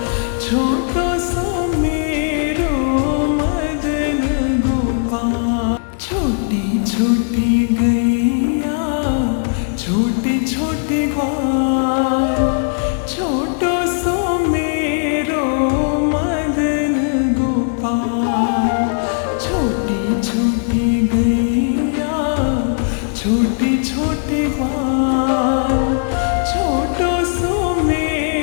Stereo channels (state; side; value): silent; right; 68 dB below the other